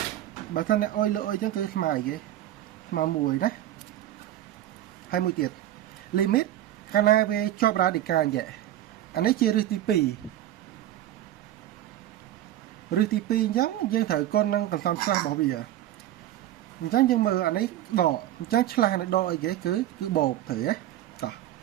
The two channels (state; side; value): quieter; left; 13.0 dB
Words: បើថាអ្នកអុយលើអុយអញ្ចឹងគឺស្មើអីគេស្មើ1ណាហើយមួយទៀត limit កាលណាវាជាប់ radical អញ្ចឹងអានេះជារឹសទី2រឹសទី2អញ្ចឹងយើងត្រូវគុណនឹងកន្សំឆ្លាស់របស់វាអញ្ចឹងយើងមើលអានេះដកអញ្ចឹងឆ្លាស់នៃដកអីគេគឺបូកត្រូវទេតោះ